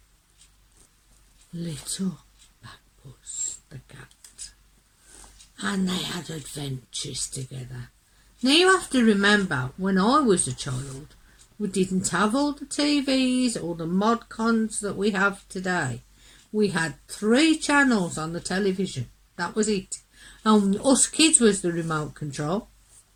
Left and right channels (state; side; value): identical; both; correlation 1.00